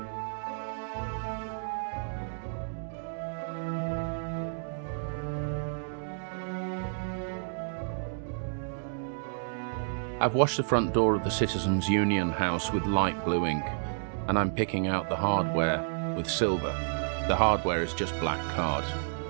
I've washed the front door of the Citizens Union house with light blue ink, and I'm picking out the hardware with silver. The hardware is just black card.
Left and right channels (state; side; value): silent; left; 57 dB below the other